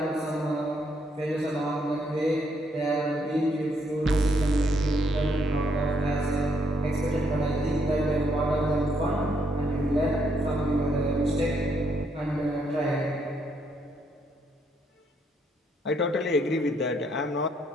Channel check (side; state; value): both; normal; correlation 0.73